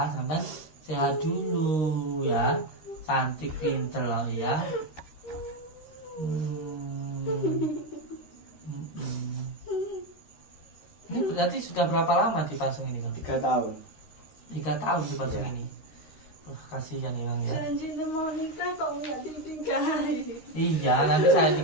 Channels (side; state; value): right; late; 13 ms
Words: sampean sehat dulu ya. Cantik pinter loh ya. Ini berarti sudah berapa lama dipasung ini Kang? 3 tahun. 3 tahun dipasung Iya. ini. Kasihan ya Kang ya. Janji mau nikah kok nggak dinikahi. Iya, nanti saya